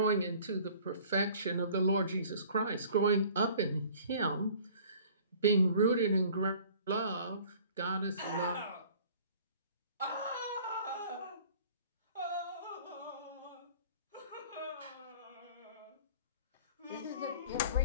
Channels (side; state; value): both; inverted; correlation -0.50